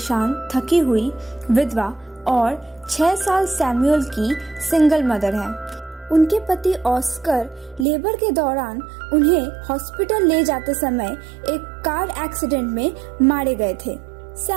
थकी हुई विधवा और 6 साल सैमुअल की सिंगल मदर है। उनके पति ऑस्कर लेबर के दौरान उन्हें हॉस्पिटल ले जाते समय एक कार एक्सीडेंट में मारे गए थे।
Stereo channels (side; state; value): left; drops out; at 7.9 s